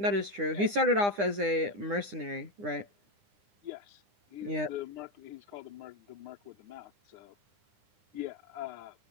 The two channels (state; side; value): late; left; 9.8 ms